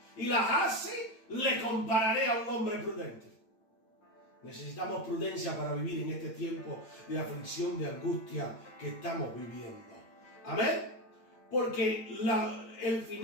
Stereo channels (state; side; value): late; right; 9.0 ms